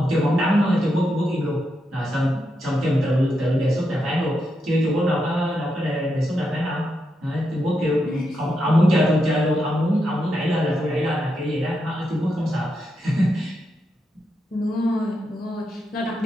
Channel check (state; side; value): normal; both; correlation 0.84